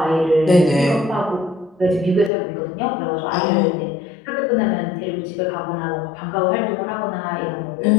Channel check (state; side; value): drops out; right; at 2.3 s